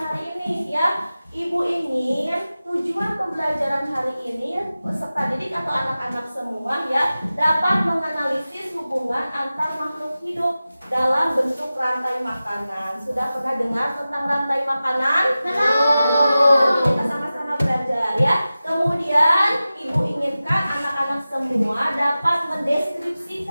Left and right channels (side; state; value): both; inverted; correlation -0.95